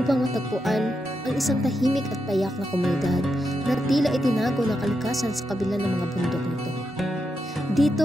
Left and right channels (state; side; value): normal; both; correlation 0.85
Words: matagpuan ang isang tahimik at payak na komunidad na tila itinago ng kalikasan sa kabila ng mga bundok nito.